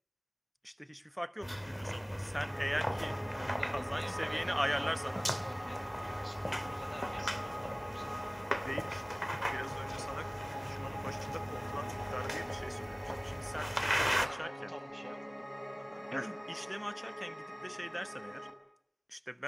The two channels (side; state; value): both; identical; correlation 1.00